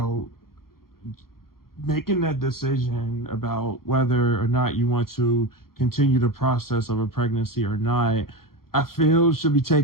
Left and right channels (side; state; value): right; late; 0.93 ms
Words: making that decision about whether or not you want to continue the process of a pregnancy or not, I feel should be